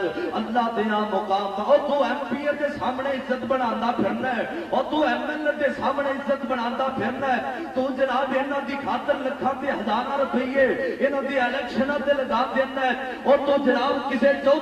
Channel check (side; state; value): both; identical; correlation 1.00